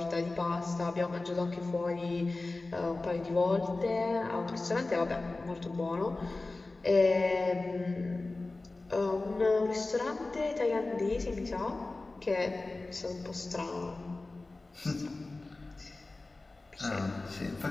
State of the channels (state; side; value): quieter; right; 3.2 dB